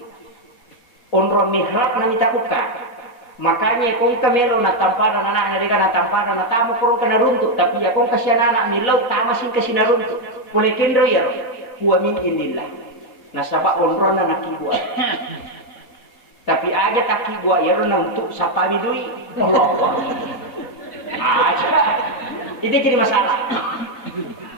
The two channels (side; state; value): right; late; 4.1 ms